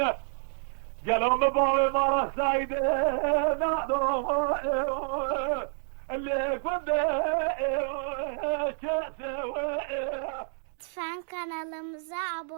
قالوا مباوي مرة سايدة نادو اللي كنت Lütfen kanalımıza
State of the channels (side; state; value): left; silent; digital silence